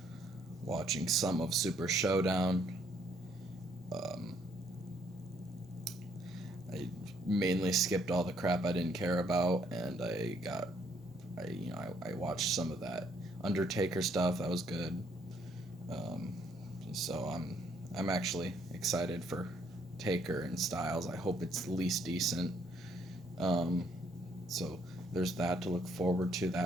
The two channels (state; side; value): normal; both; correlation 0.68